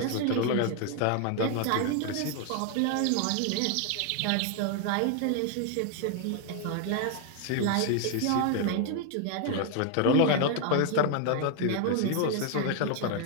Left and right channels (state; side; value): different; both; correlation 0.00